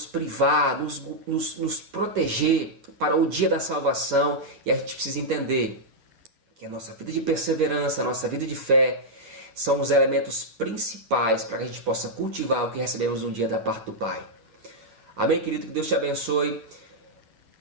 privar, nos proteger para o dia da salvação. E a gente precisa entender que a nossa vida de perseverança, a nossa vida de fé, são os elementos principais para que a gente possa cultivar o que recebemos um dia da parte do Pai. Amém, querido? Que Deus te abençoe.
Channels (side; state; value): left; late; 9.5 ms